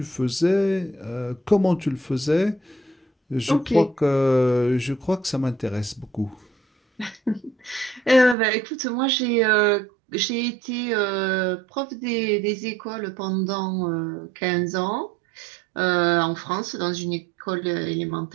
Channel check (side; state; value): left; drops out; at 8.3 s